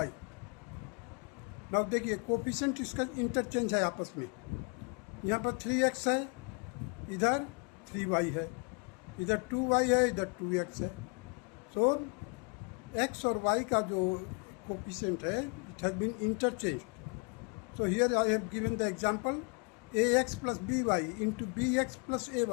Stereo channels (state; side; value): quieter; right; 34.4 dB